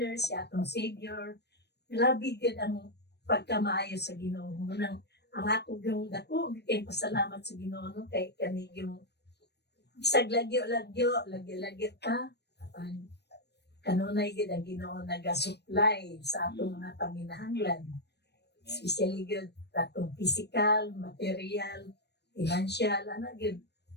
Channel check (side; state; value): right; late; 0.49 ms